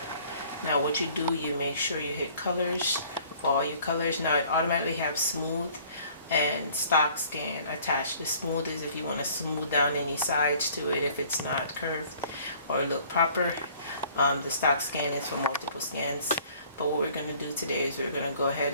Now what you do, you make sure you hit colors for all your colors. Now it automatically have smooth and stock scan attached. The smooth is if you want to smooth down any sides to it if it's not curved or look proper. The stock scan is for multiple scans. But what we're going to do today is we're going to go ahead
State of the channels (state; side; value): inverted; both; correlation -0.55